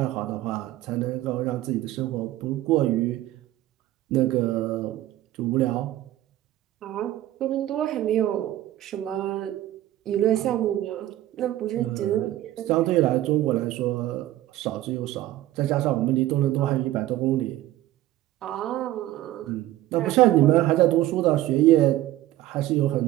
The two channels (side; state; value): left; quieter; 14.8 dB